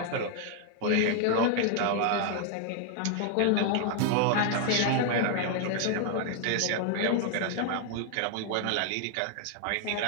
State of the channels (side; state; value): both; different; correlation 0.00